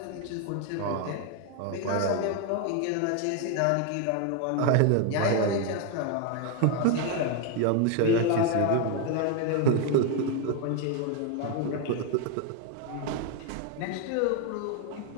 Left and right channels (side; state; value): both; different; correlation 0.01